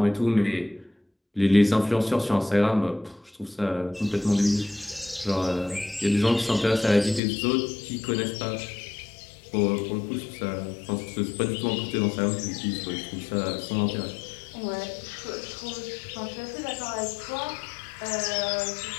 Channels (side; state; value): right; drops out; at 7.2 s